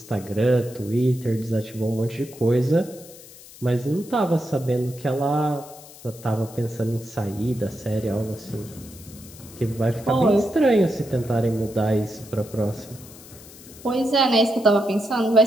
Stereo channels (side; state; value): left; noise; hiss, 19 dB below the sound